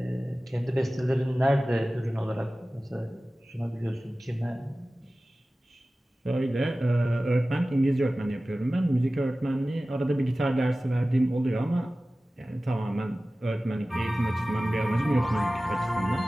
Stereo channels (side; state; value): both; normal; correlation 0.96